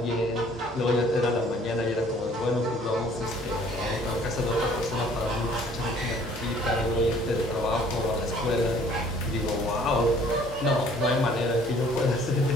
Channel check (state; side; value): normal; both; correlation 0.57